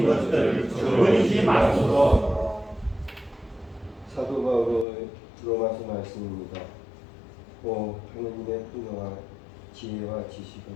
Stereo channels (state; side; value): drops out; right; at 4.9 s